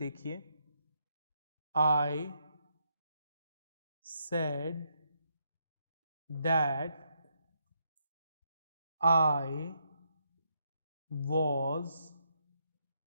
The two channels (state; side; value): inverted; both; correlation -0.77